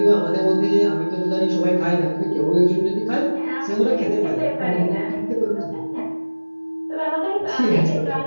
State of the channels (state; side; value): inverted; both; correlation -1.00